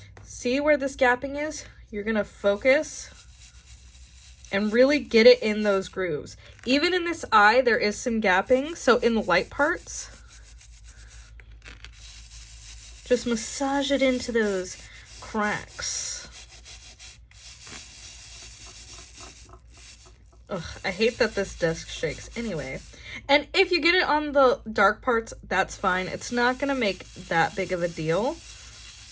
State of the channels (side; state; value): both; identical; correlation 1.00